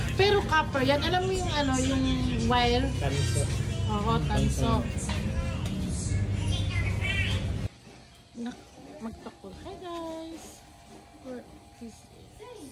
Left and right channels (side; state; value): both; identical; correlation 1.00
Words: Pero copper yan. Alam mo yung ano, yung wire? Tanso. Oo, tanso. Magtakol. Hi guys! This is